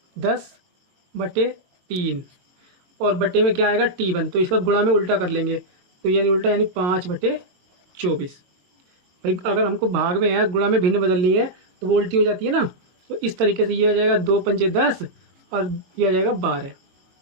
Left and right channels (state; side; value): late; left; 22 ms